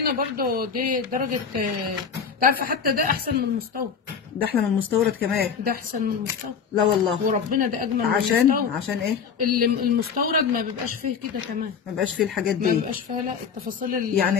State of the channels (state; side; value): quieter; right; 6.5 dB